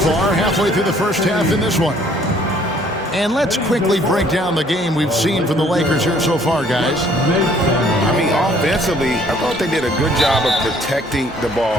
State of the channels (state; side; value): normal; both; correlation 0.60